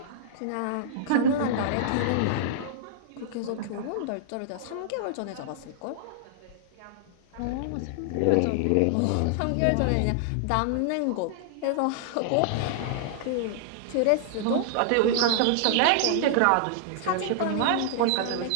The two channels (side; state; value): both; different; correlation -0.01